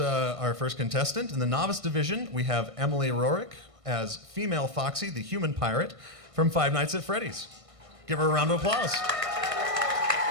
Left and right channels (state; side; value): late; left; 1.6 ms